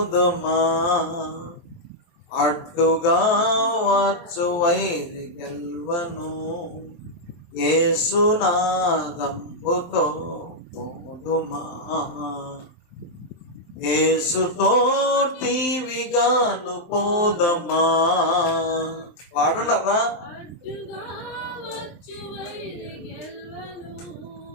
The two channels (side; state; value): right; late; 23 ms